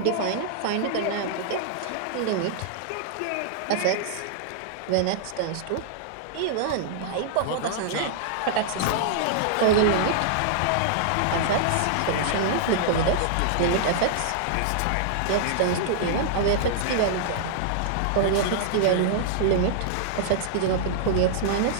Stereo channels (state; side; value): different; both; correlation -0.01